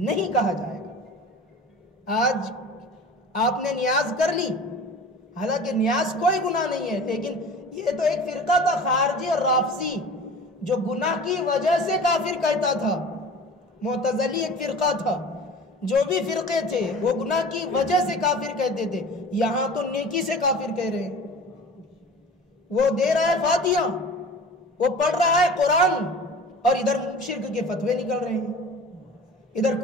کہا جائے گا. آج آپ نے نیاز کر لی، حالانکہ نیاز کوئی گناہ نہیں ہے، لیکن یہ تو ایک فرقہ تھا خارجی اور رافضی جو گناہ کی وجہ سے کافر کہتا تھا. معتزلی ایک فرقہ تھا، جو بھی فرقے تھے وہ گناہ کی وجہ سے کافر کہتے تھے. یہاں تو نیکی سے کافر کہہ رہے ہیں. وہ دے رہا ہے فاتحہ، وہ پڑھ رہا ہے قرآن، اور ادھر شرک کے فتوے نکل رہے ہیں، ادھر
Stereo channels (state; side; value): normal; both; correlation 0.40